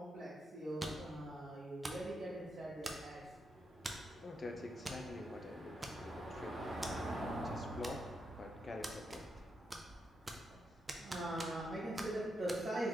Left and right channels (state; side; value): normal; both; correlation 0.83